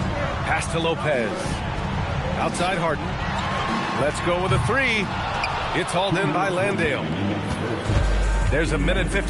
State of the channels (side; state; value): both; identical; correlation 1.00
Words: Pass to Lopez. Outside Harden. Let's go with a 3. It's hauled in by Landale. There's a minute